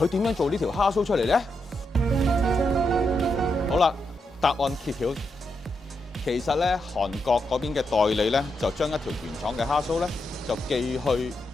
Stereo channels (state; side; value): normal; both; correlation 0.83